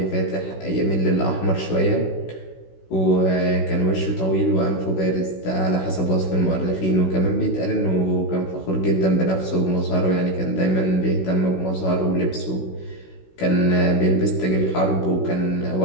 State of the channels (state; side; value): late; right; 16 ms